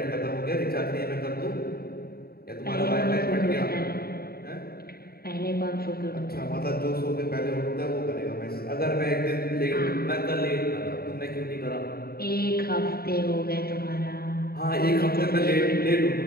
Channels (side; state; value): right; late; 0.45 ms